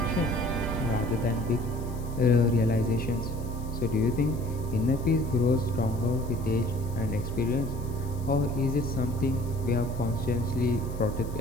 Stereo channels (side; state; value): left; noise; hiss, 22 dB below the sound